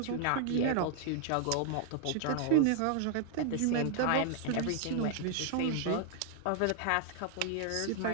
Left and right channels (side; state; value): both; different; correlation 0.00